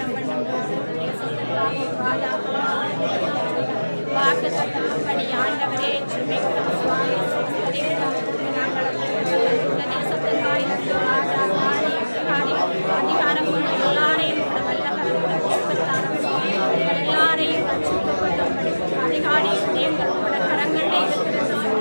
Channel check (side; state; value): both; inverted; correlation -1.00